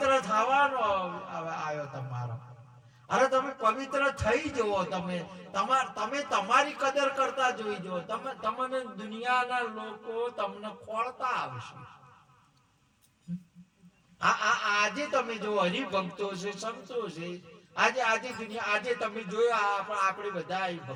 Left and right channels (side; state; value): both; identical; correlation 1.00